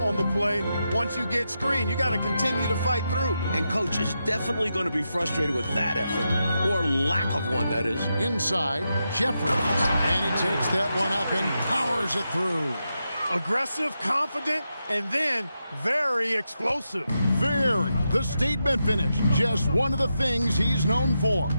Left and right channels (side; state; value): both; inverted; correlation -0.87